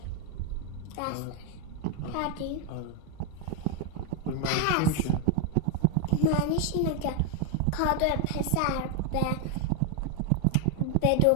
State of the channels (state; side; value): different; both; correlation 0.01